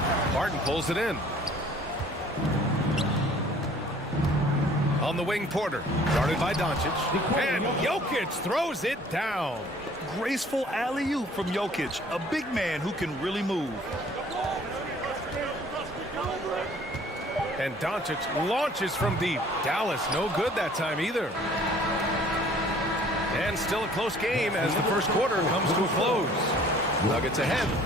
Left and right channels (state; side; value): normal; both; correlation 0.54